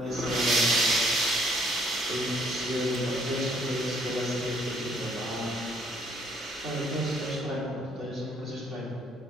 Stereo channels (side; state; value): both; normal; correlation 0.65